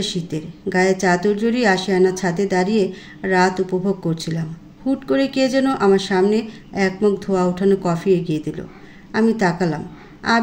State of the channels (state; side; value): identical; both; correlation 1.00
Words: শীতের। গায়ে চাদর জড়িয়ে আশিয়ানা ছাদে দাঁড়িয়ে রাত উপভোগ করছিলাম। হুট করে কে যেন আমার সামনে এক মগ ধোয়া ওঠানো কফি এগিয়ে দিল। আমি তাকালাম।